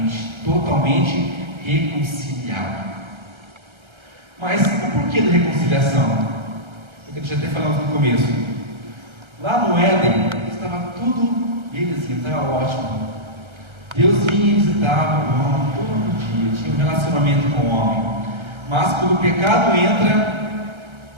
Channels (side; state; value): left; late; 1.3 ms